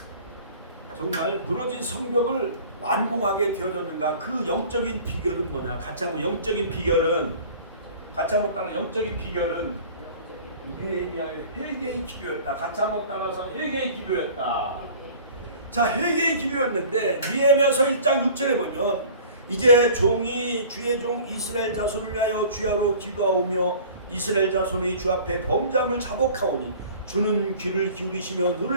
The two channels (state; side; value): inverted; both; correlation -0.45